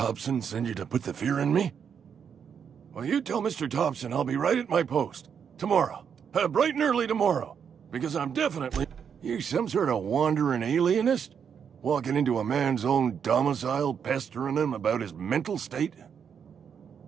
send you to put the fear in me? Well, you tell Mr. Thompson I'll be right at my post. Tomorrow. Bright and early tomorrow. Because I'm definitely... You some sort of wandering alienist? Walking into a man's own domicile, pestering him about his mental state?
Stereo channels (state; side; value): quieter; left; 7.4 dB